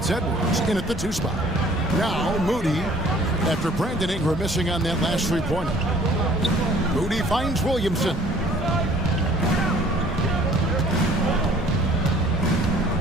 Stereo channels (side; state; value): both; normal; correlation 0.54